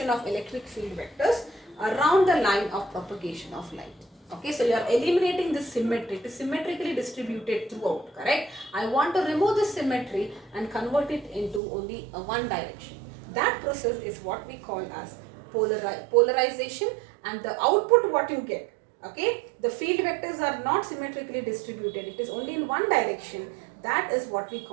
of electric field vectors around the line of propagation of light. Okay, so you are eliminating this symmetry. It is symmetrically distributed throughout, correct? I want to remove this symmetry and convert it into only one direction. That process is what we call as polarization, and the output what you get. Okay, the field vectors are not symmetrically distributed. It is only in one direction. That is what we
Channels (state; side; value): drops out; left; at 11.6 s